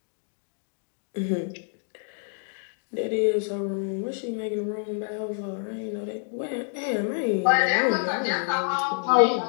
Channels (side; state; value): right; silent; digital silence